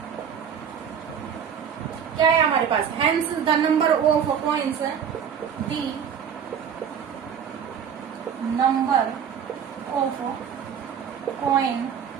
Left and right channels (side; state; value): left; quieter; 7.8 dB